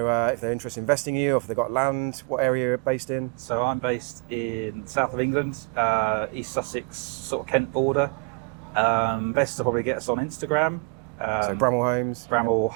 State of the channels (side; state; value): left; quieter; 33.8 dB